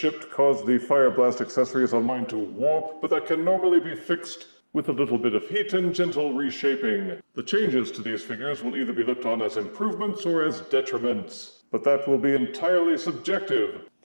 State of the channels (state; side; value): inverted; both; correlation -1.00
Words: caused the Fire Blast accessories on mine to warp, but that can normally be fixed with a little bit of heat and gentle reshaping. The changes to these figures will either be looked on as improvements or as detriments, but that will be entirely subjective.